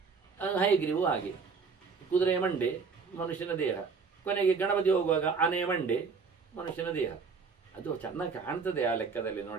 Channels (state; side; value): quieter; left; 5.2 dB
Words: ಹಯಗ್ರೀವು ಹಾಗೆ. ಕುದುರೆಯ ಮಂಡೆ ಮನುಷ್ಯನ ದೇಹ. ಕೊನೆಗೆ ಗಣಪತಿ ಹೋಗುವಾಗ ಆನೆಯ ಮಂಡೆ ಮನುಷ್ಯನ ದೇಹ. ಅದು ಚೆನ್ನಾಗಿ ಕಾಣ್ತದೆ ಆ ಲೆಕ್ಕದಲ್ಲಿ